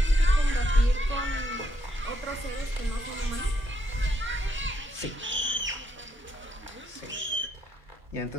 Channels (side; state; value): both; normal; correlation 0.76